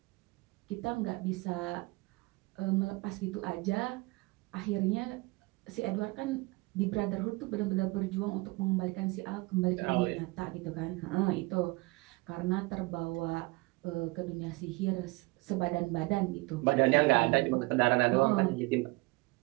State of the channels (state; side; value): quieter; left; 24.6 dB